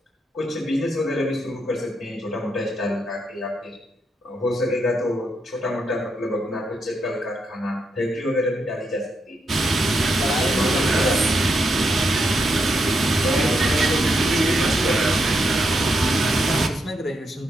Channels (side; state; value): both; normal; correlation 0.81